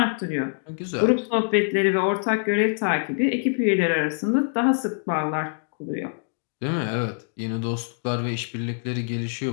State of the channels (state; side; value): silent; right; digital silence